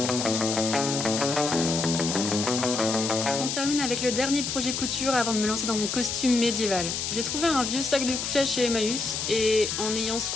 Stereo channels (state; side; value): noise; left; hiss, 3 dB below the sound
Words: On termine avec le dernier projet couture avant de me lancer dans mon costume médiéval. J'ai trouvé un vieux sac de couchage chez Emmaüs et en ayant